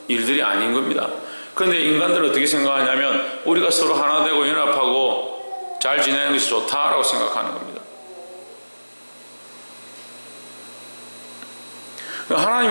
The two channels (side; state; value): both; inverted; correlation -1.00